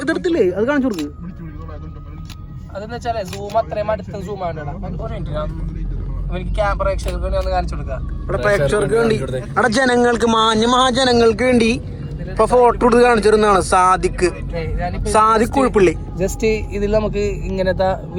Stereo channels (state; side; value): identical; both; correlation 1.00